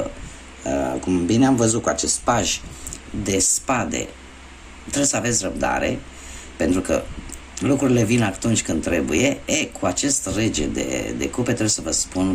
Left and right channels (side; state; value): both; identical; correlation 1.00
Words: cum bine am văzut cu acest paj de spade, trebuie să aveți răbdare, pentru că lucrurile vin atunci când trebuie. Cu acest rege de cupe trebuie să vă